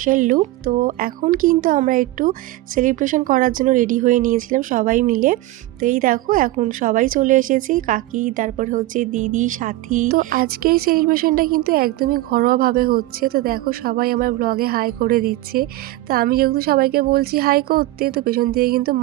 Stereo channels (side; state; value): left; quieter; 17.4 dB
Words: লুক। তো এখন কিন্তু আমরা একটু সেলিব্রেশন করার জন্য রেডি হয়ে নিয়েছিলাম সবাই মিলে। তো এই দেখো এখন সবাই চলে এসেছি, কাকি, তারপর হচ্ছে দিদি, সাথী। তো আজকের সেলিব্রেশনটা কিন্তু একদমই ঘরোয়াভাবে হচ্ছে। তো দেখো সবাই আমার ব্লগে হাই করে দিচ্ছে। তো আমি যেহেতু সবাইকে বলছি হাই করতে, তো পেছন থেকে কিন্তু